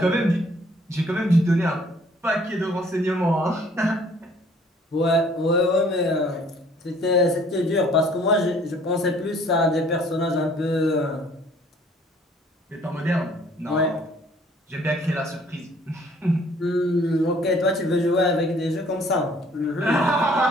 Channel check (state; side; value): normal; both; correlation 0.58